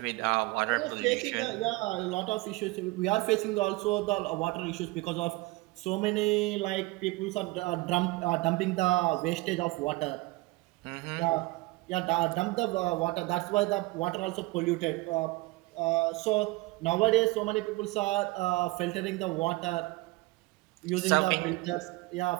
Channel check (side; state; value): left; quieter; 22.4 dB